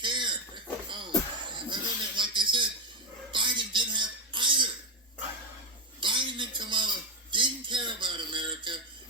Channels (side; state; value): both; normal; correlation 0.07